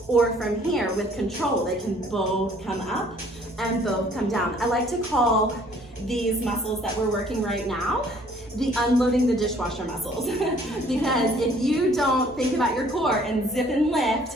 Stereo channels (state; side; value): normal; both; correlation 0.58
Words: or from here with control, they can both come up and both come down. I like to call these muscles that we're working right now the unloading the dishwasher muscles. Because if you don't think about your core and zip and lift